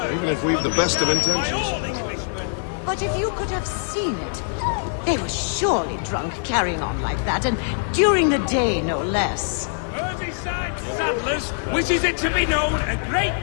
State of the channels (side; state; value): right; silent; digital silence